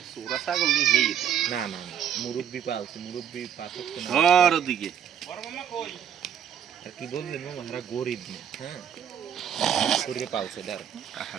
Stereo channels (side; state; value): left; quieter; 8.9 dB